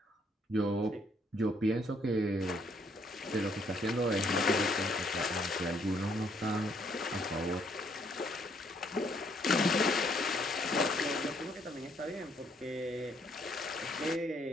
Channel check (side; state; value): both; normal; correlation 0.68